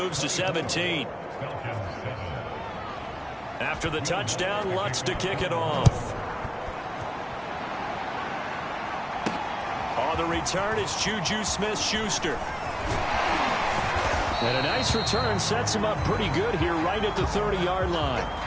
to 17. After the touchdown, Lutz to kick it off. On the return, it's Juju Smith-Schuster. And a nice return sets him up pretty good here right at the 30-yard line.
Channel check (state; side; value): identical; both; correlation 1.00